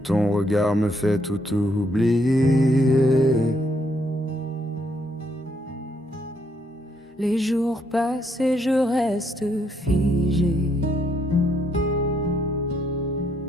regard me fait tout oublier. Les jours passent et je reste figé.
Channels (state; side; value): normal; both; correlation 0.73